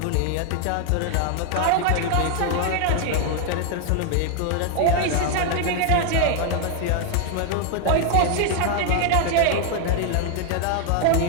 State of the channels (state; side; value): different; both; correlation 0.00